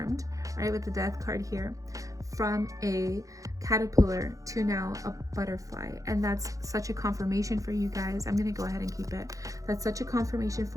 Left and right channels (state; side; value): late; left; 0.16 ms